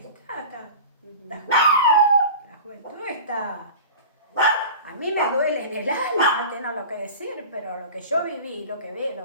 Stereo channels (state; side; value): inverted; both; correlation -0.36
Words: Ujú. la juventud está... A mí me duele en el alma tener lo que decir, pero lo que yo viví, lo que